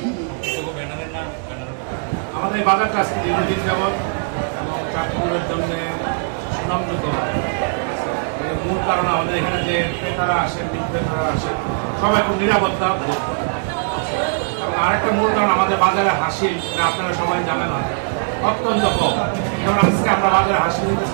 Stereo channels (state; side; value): silent; left; digital silence